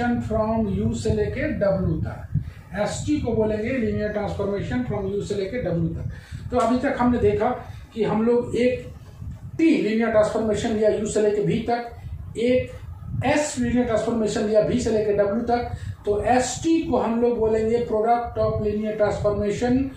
from U से लेके W तक। ST को बोलेंगे लीनियर ट्रांसफॉर्मेशन फ्रॉम U से लेके W तक। तो अभी तक हमने देखा कि हम लोग एक T लीनियर ट्रांसफॉर्मेशन लिया U से लेके V तक, एक S लीनियर ट्रांसफॉर्मेशन लिया V से लेके W तक। तो ST को हम लोग बोलेंगे product of linear transformation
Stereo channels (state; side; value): identical; both; correlation 1.00